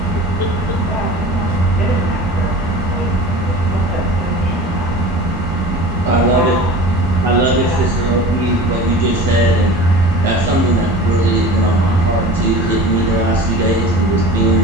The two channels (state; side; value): normal; both; correlation 0.37